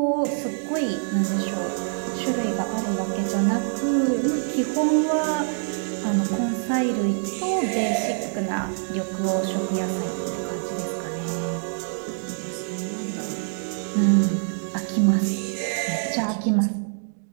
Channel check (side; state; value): left; silent; digital silence